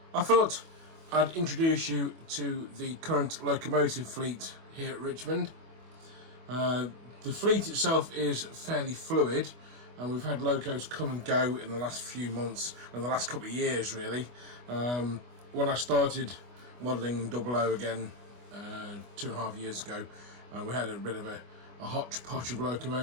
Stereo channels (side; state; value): left; late; 25 ms